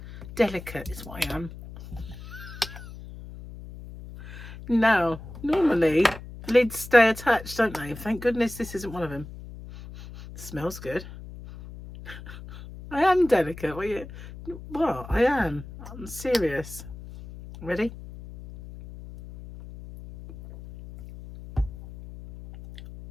Delicate is what I am. Now, normally lids stay attached, don't they? Thank goodness this isn't one of them. Smells good. I am delicate. What? I am. I'm serious. Ready?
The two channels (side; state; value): left; noise; hum, 14 dB below the sound